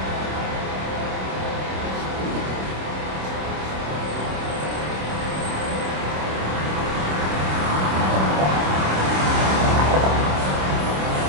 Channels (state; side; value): late; left; 26 ms